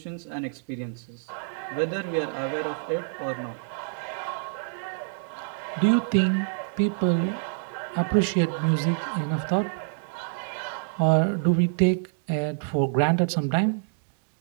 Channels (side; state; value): left; silent; digital silence